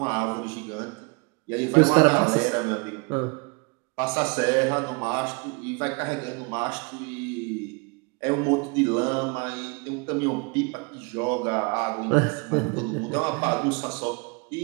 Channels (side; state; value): left; quieter; 32.0 dB